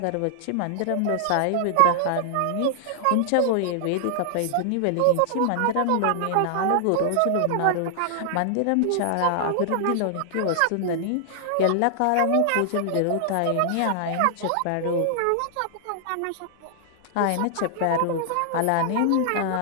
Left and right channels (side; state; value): both; different; correlation -0.01